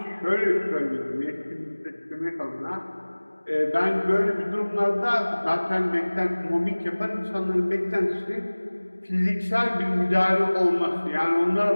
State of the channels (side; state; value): both; inverted; correlation -1.00